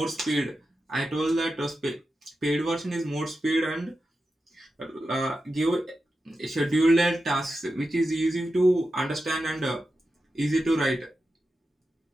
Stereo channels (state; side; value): normal; both; correlation 0.91